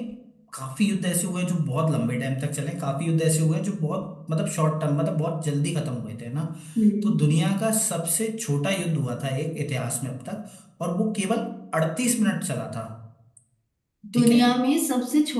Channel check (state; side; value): identical; both; correlation 1.00